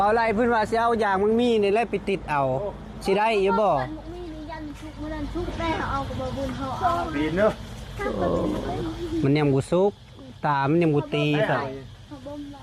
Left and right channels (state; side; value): identical; both; correlation 1.00